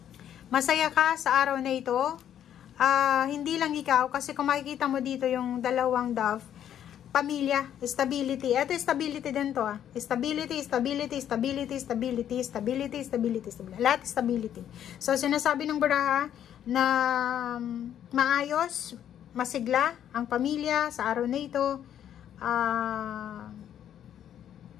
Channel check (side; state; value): right; quieter; 10.1 dB